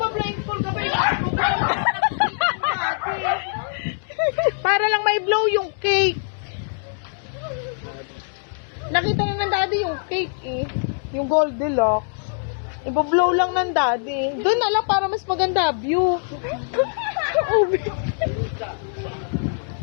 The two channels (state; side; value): silent; right; digital silence